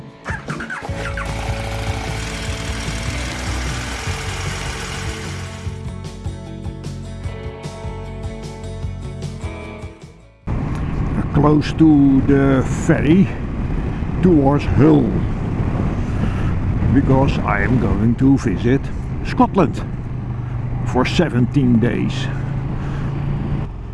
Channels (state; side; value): identical; both; correlation 1.00